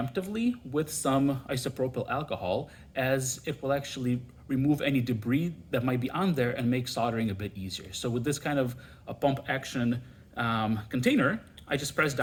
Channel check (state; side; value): identical; both; correlation 1.00